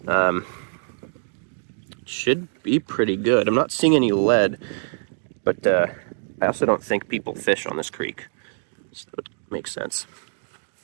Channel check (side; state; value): left; silent; digital silence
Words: should be pretty good. I'm not seeing any lead, but I also don't think people fish on this creek. So it makes sense.